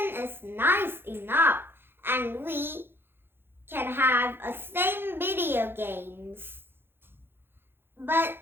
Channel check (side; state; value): left; late; 0.10 ms